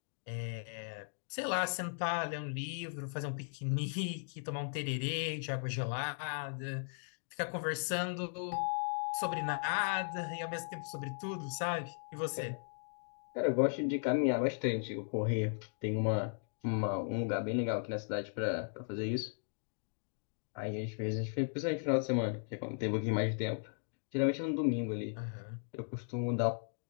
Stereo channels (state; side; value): silent; right; digital silence